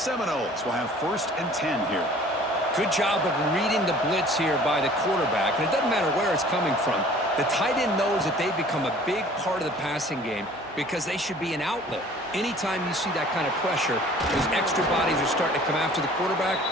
will have 1st and 10 here. Good job of reading the blitz here by the quarterback, and it doesn't matter where it's coming from. The tight end knows that they become a big part of the passing game because they should be an outlet. Anytime you see that kind of pressure, those extra bodies are starting to come after the quarterback.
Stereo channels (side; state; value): both; normal; correlation 0.50